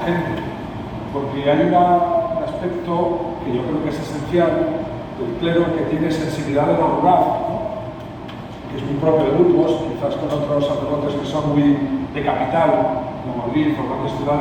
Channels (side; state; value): both; identical; correlation 1.00